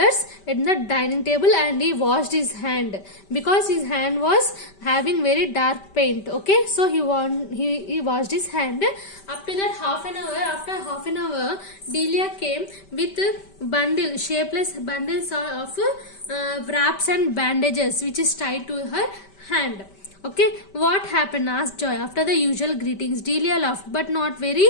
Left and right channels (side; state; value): right; late; 5.1 ms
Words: at the dining table and he washed his hand because his hand was having very dark paint. Okay, so he washed his hand. After that, after half an hour, Delia came with shapeless bundles of wraps and bandages which is tied to her hand. Okay, what happened? Asked Joy. After the usual greetings, Delia laughed, but not very